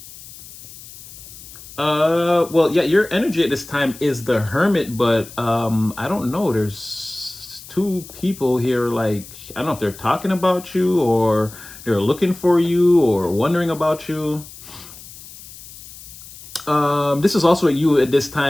Well, yeah, your energy at this time is the Hermit, but I don't know. There's two people here, like, I don't know if they're talking about you or they're looking for you or wondering about you. This is also you at this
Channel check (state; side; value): noise; left; hiss, 17 dB below the sound